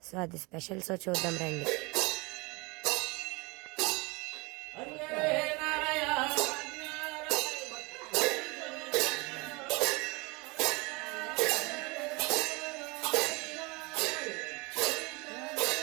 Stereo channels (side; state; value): left; quieter; 26.8 dB